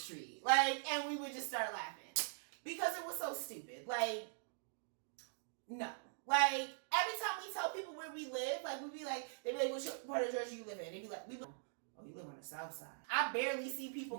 Like, and we would just start laughing. Because it was so stupid. Like, no. Like, every time we tell people where we live, like, we'd be like, they'd be like, which part of Georgia you live in? They'd be like, oh, you live on the south side. I barely see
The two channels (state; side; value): silent; left; digital silence